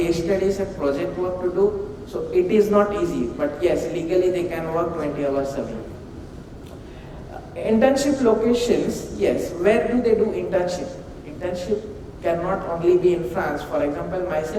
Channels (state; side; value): identical; both; correlation 1.00